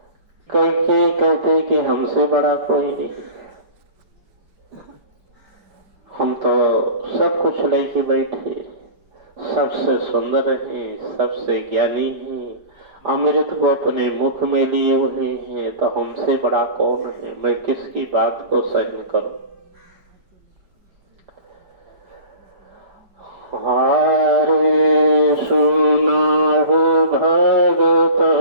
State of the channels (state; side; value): late; left; 4.8 ms